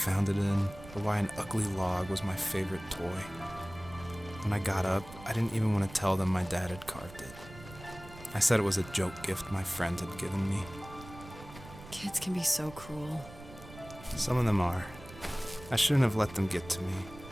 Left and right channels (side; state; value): right; noise; rumble, 17 dB below the sound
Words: it in, or why an ugly log was my favorite toy. When I got up, I didn't even want to tell them my dad had carved it. I said it was a joke gift my friend had given me. Kids can be so cruel. Some of them are. I shouldn't have let them get to me,